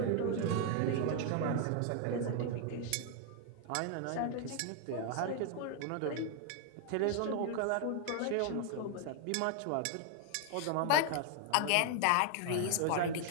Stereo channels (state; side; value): different; both; correlation 0.00